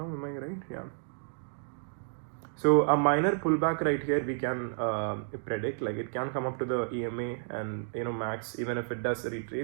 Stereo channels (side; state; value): left; silent; digital silence